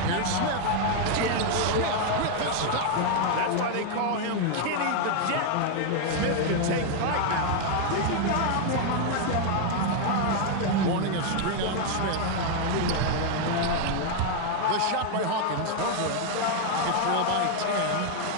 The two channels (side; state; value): both; different; correlation 0.00